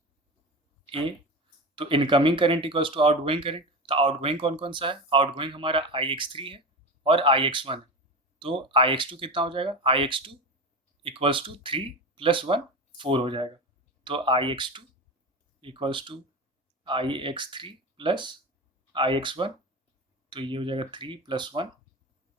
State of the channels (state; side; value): normal; both; correlation 0.25